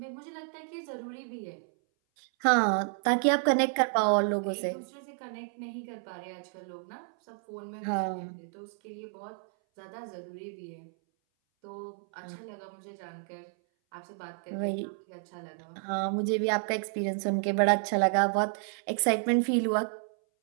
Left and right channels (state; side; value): silent; left; 57 dB below the other